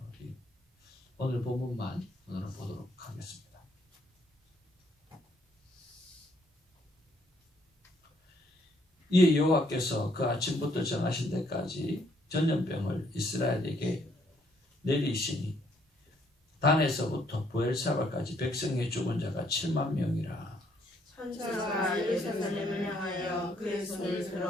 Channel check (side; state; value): both; normal; correlation 0.68